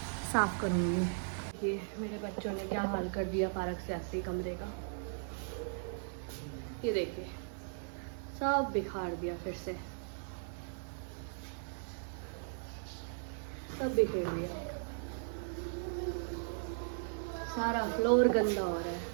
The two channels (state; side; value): silent; left; digital silence